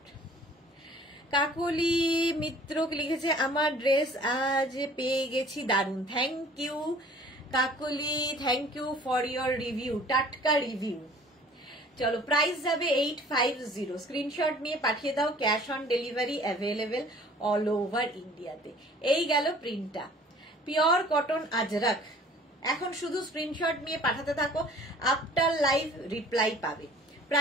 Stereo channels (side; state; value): both; normal; correlation 0.51